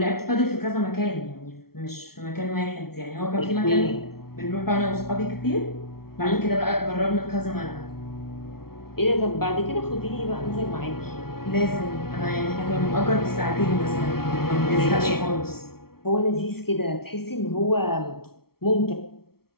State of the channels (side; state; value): right; late; 0.94 ms